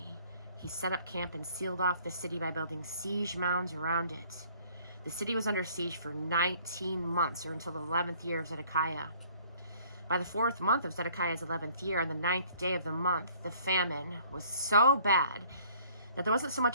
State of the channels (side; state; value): both; inverted; correlation -0.57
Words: He set up camp and sealed off the city by building siege mounds around it. The city was under siege for 19 months, or until the 11th year of Zedekiah. By the 4th month of Zedekiah's 11th year, on the 9th day of the month, the famine was so bad that there wasn't so